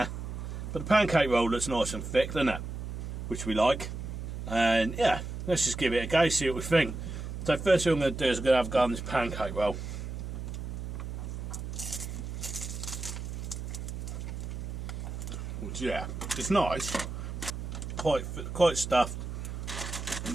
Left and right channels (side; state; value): right; noise; hum, 6 dB below the sound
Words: But the pancake roll looks nice and thick, doesn't it? Which we like. And yeah, let's just give it a go, see what we think. So first thing I'm going to do is I'm going to have a go on this pancake roll. Which, yeah, it's nice. Quite stuffed.